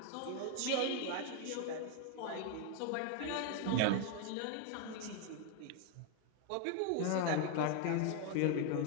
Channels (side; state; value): both; different; correlation 0.01